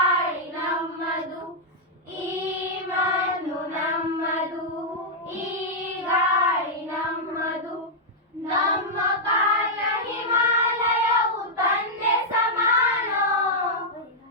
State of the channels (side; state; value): both; normal; correlation -0.07